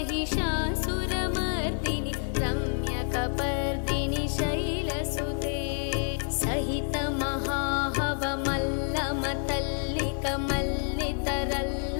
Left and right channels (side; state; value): right; silent; digital silence